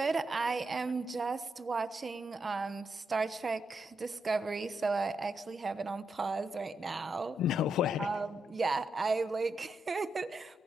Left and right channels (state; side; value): normal; both; correlation 0.83